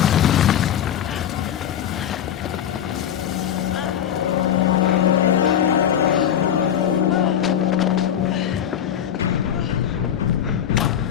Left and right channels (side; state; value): right; quieter; 9.7 dB